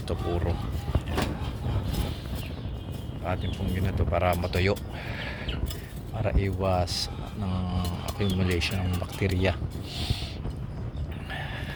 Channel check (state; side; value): identical; both; correlation 1.00